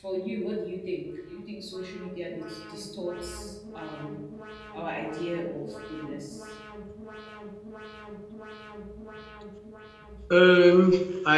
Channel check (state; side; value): identical; both; correlation 1.00